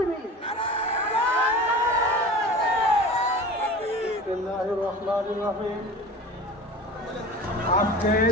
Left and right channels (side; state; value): both; normal; correlation 0.36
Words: বিসমিল্লাহির রহমানির রহিম।